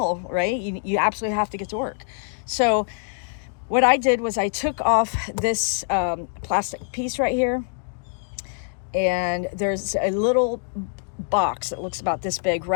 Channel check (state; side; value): silent; right; digital silence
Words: right? You absolutely have to get to work. So what I did was I took off this plastic piece right here, and there's a little box that looks about this big